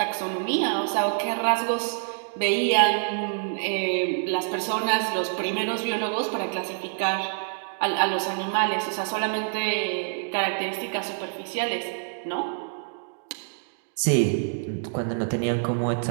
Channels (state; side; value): silent; left; digital silence